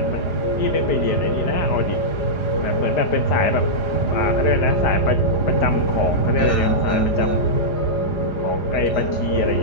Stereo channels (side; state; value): right; late; 4.9 ms